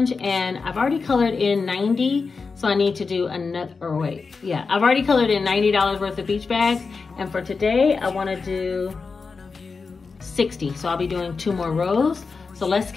and I've already colored in 90. So I need to do another, or wait, yeah, I've already colored in $90 worth of beach bags. And for today, I wanna do 60. So I'll be doing 2 more rows. So let's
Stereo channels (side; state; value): right; quieter; 4.7 dB